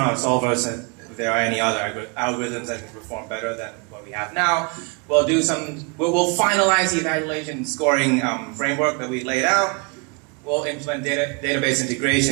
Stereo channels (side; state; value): left; quieter; 32.4 dB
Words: our solvers and if there are any other algorithms that can perform better than what we have now. We'll finalize the evaluation scoring framework that we laid out. We'll implement database